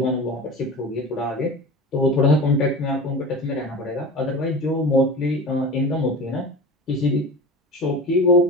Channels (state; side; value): normal; both; correlation 0.32